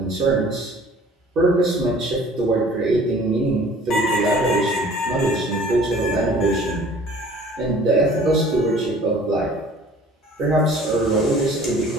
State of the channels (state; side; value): normal; both; correlation 0.50